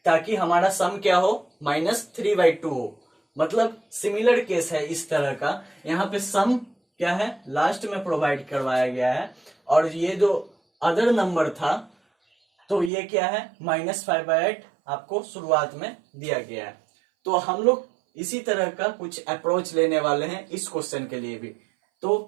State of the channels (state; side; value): drops out; left; at 12.9 s